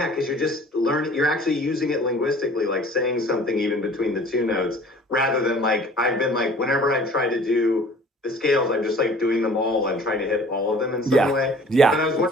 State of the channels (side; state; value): both; normal; correlation 0.49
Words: you're just learning, you're actually using it linguistically, like saying something even between the 2 notes, rather than like, I've been like, whenever I try to do the scales, I'm just like doing them all and trying to hit all of them in some way. Yeah. But I was